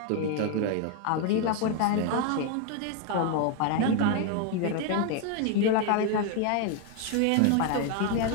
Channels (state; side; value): different; both; correlation 0.01